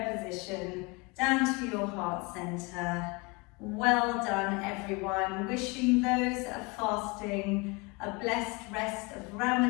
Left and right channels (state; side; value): quieter; right; 27.0 dB